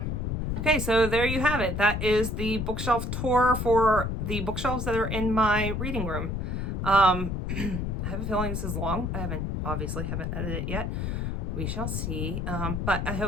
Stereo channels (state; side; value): noise; left; rumble, 2 dB below the sound